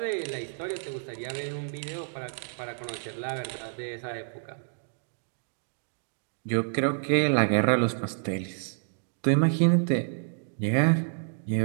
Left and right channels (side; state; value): left; silent; digital silence